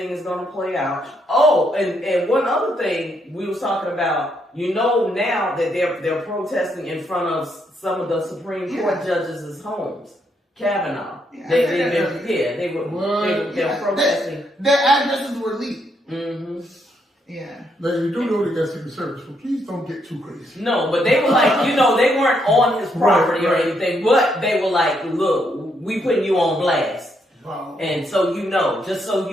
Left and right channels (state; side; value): normal; both; correlation 0.76